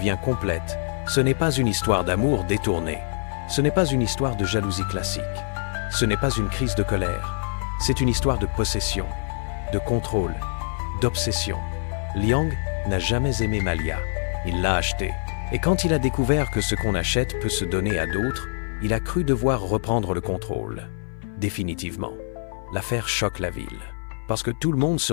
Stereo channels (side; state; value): right; silent; 56 dB below the other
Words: complète. Ce n'est pas une histoire d'amour détournée. Ce n'est pas une histoire de jalousie classique. Ce n'est pas une crise de colère. C'est une histoire de possession, de contrôle, d'obsession. Liang n'a jamais aimé Malia. Il l'a achetée. Et quand il a découvert que ce qu'on achète peut se donner à d'autres, il a cru devoir reprendre le contrôle. Définitivement. L'affaire choque la ville. Parce que tout le monde se